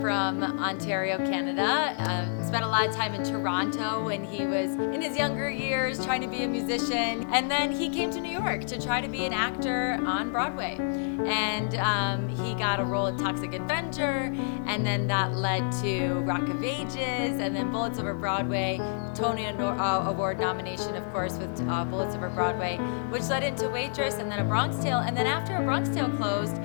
Ontario, Canada. Spent a lot of time in Toronto when he was in his younger years trying to be a musician. And then he came to New York to try to be an actor on Broadway. And he got a role in Toxic Avenger, and then that led to Rock of Ages, and then Bullets Over Broadway, Tony Award nomination, of course, with Bullets Over Broadway, which led into Waitress, and then A Bronx Tale. And then after A Bronx Tale closed,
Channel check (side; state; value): right; silent; digital silence